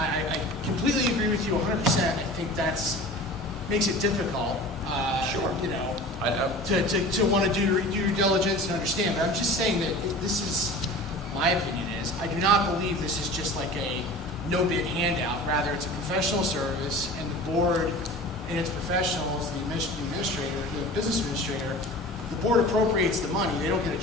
completely agree with you 100%. I think that's makes it difficult, Sure. you know, to want to do due diligence and understand. But I'm just saying that this is, my opinion is, I do not believe this is just like a no-bid handout. Rather, it's a professional service, and the board and its professionals, the administrator, the business administrator, the board appropriates the money. They don't get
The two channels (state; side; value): normal; both; correlation 0.38